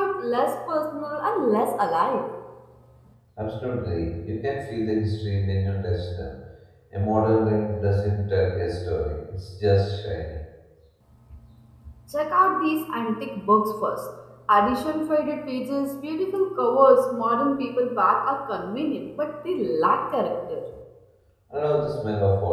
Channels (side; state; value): both; identical; correlation 1.00